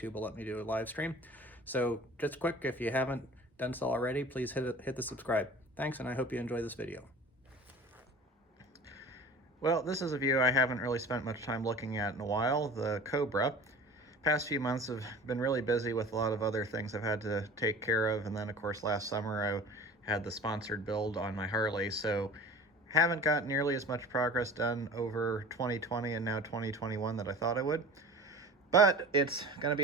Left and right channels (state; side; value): normal; both; correlation 0.40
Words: will let me do a live stream. So just quick, if you haven't done so already, please hit the subscribe. Thanks, and I hope you enjoy this video. Well, this is a view I haven't really spent much time looking at in a while, the Cobra. Past few months have been really busy with a lot of other things I've had to take care of, and then of course last summer I had the sponsored build on my Harley, so haven't got nearly as much progress done over 2020 and now 2021 that I thought I would. But it's going to